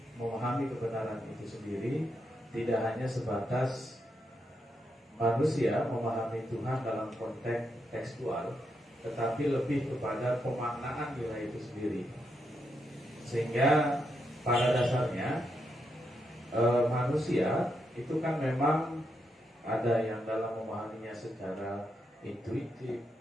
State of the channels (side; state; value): both; normal; correlation 0.82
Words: memahami kebenaran itu sendiri. Tidak hanya sebatas manusia memahami Tuhan dalam konteks tekstual, tetapi lebih kepada pemaknaan nilai itu sendiri. Sehingga pada dasarnya manusia itu kan memang ada yang dalam memahaminya secara intuitif,